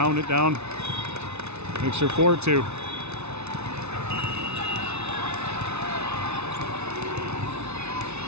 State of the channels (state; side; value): late; left; 0.81 ms